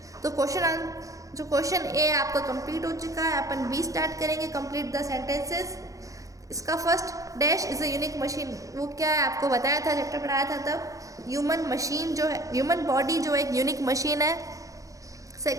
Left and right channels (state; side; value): late; left; 0.16 ms